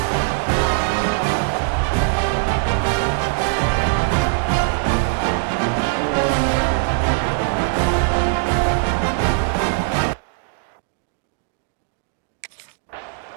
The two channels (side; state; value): left; silent; digital silence